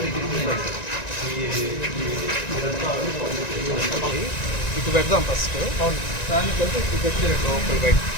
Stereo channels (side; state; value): right; late; 1.9 ms